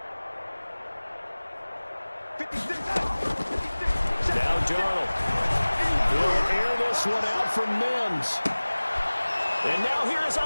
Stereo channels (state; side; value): inverted; both; correlation -1.00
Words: 56. Now Darnold. He'll air this one out for Mims. And now here's